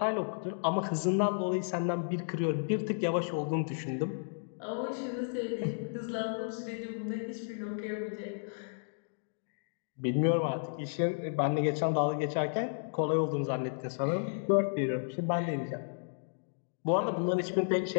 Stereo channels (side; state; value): right; silent; digital silence